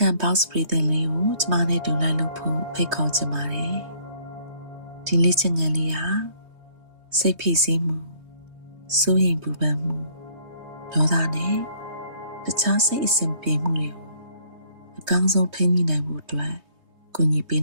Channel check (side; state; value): left; late; 3.2 ms